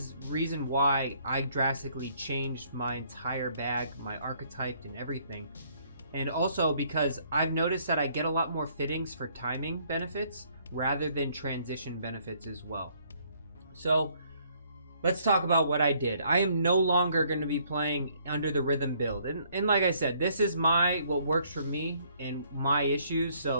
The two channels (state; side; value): inverted; both; correlation -0.65